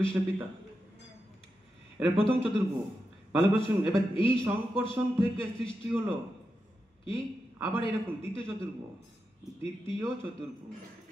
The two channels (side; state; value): both; normal; correlation 0.88